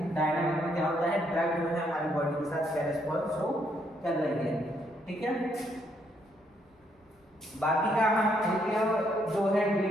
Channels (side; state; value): both; normal; correlation 0.73